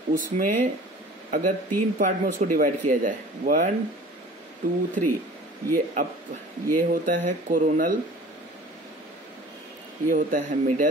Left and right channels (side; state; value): both; normal; correlation 0.45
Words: उसमें अगर 3 पार्ट में उसको डिवाइड किया जाए, 1 2 3, ये होता है कोरोनल, ये होता है